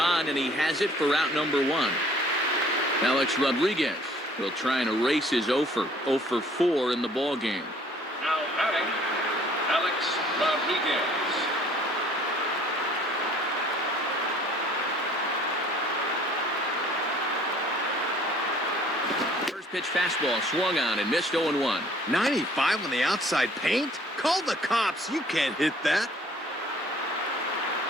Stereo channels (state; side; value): normal; both; correlation 0.55